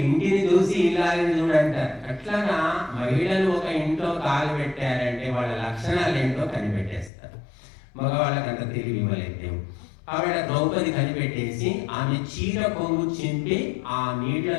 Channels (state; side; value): drops out; right; at 7.1 s